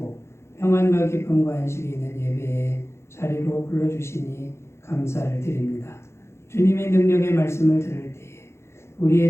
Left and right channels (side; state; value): right; late; 0.13 ms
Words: 평안과 기쁨과 안식이 있는 예배의 자리로 불러주시니 감사를 드립니다. 주님의 능력의 말씀을 들을 때에 우리의